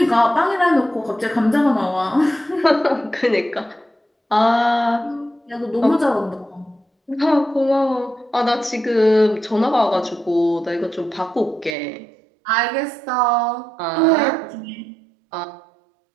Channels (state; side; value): drops out; left; at 11.8 s